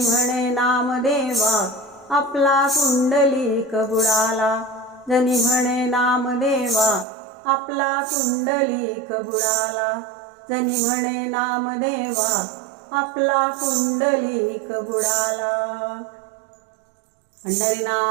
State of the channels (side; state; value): left; drops out; at 7.1 s